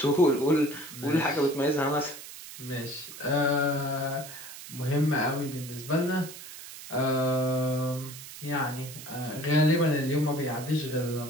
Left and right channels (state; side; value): noise; right; hiss, 13 dB below the sound